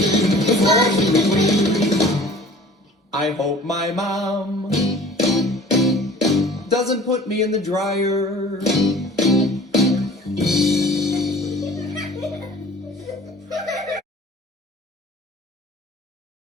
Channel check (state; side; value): normal; both; correlation 0.46